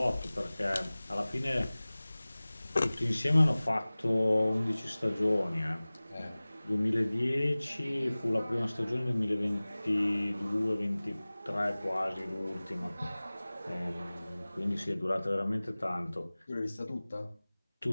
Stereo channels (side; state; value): both; inverted; correlation -0.99